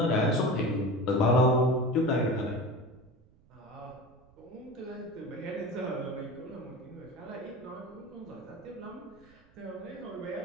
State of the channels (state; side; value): noise; right; rumble, 28 dB below the sound